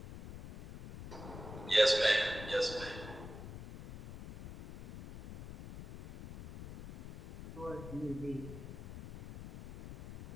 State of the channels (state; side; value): noise; left; rumble, 12 dB below the sound